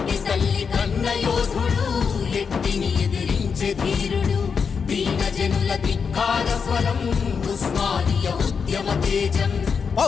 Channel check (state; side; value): quieter; right; 6.0 dB